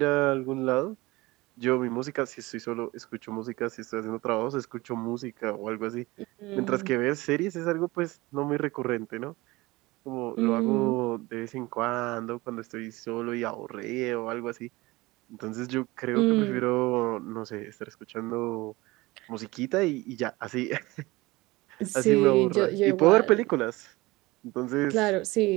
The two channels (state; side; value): quieter; left; 21.2 dB